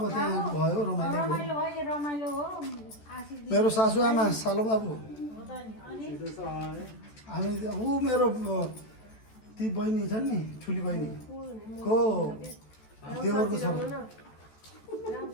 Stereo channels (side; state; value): right; late; 14 ms